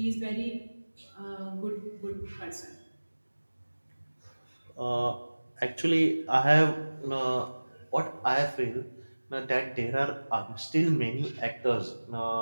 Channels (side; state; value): both; inverted; correlation -1.00